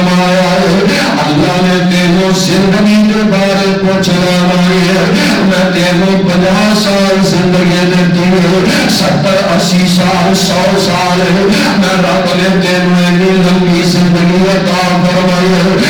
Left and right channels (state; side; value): identical; both; correlation 1.00